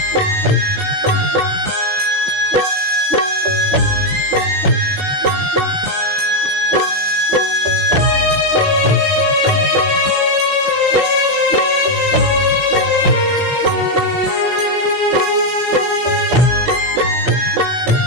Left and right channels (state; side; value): late; left; 15 ms